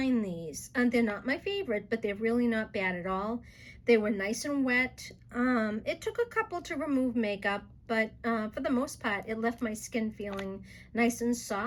these, and they're not my favorite, but they're really not bad at all. They were nice and wet. It took a couple to remove makeup, but for the most part, it left my skin feeling nice and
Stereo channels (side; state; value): both; identical; correlation 1.00